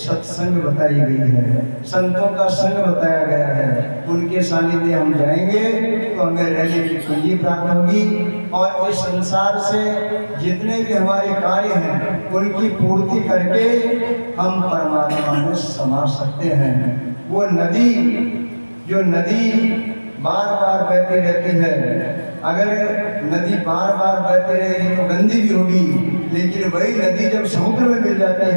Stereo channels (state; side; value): inverted; both; correlation -1.00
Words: बताई गई है, संतों का संग बताया गया है। उनके सानिध्य हम जाएंगे तो हमें रहने की पूंजी प्राप्त होगी और इस संसार से जितने भी हमारे कार्य हैं उनकी पूर्ति करके हम परमात्मा में समा सकते हैं। वो नदी, जो नदी बार बार बहती रहती है, अगर नदी बार बार बहती रहेगी तो गंदी भी होगी, लेकिन वही नदी जब समुद्र में मिल जाती